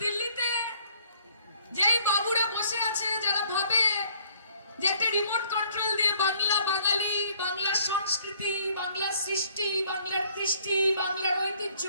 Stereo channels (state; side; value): inverted; both; correlation -0.61